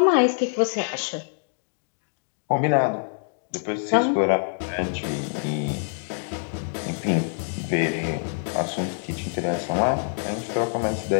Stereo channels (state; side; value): silent; right; digital silence